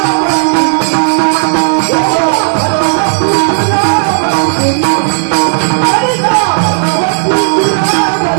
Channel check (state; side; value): silent; left; digital silence